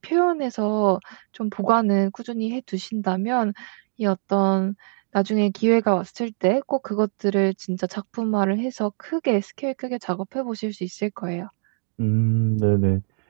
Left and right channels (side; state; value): left; silent; digital silence